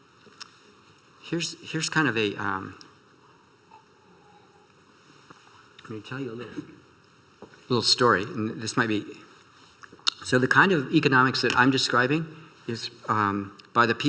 kind of a let me tell you a little story, and this might be. So the kind of economics that I'm describing is by the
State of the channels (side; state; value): both; identical; correlation 1.00